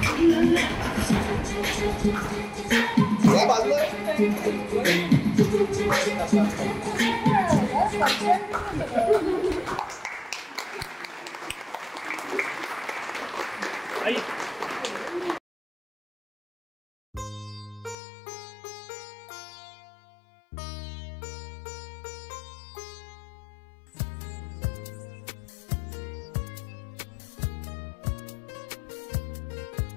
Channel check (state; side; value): drops out; right; at 17.9 s